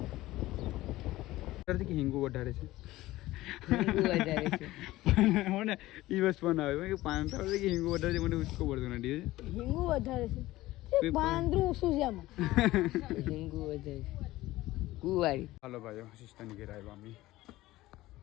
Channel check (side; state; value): right; quieter; 17.2 dB